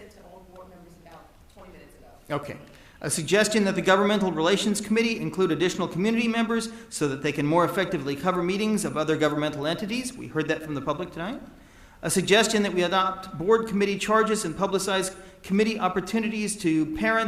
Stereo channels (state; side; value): identical; both; correlation 1.00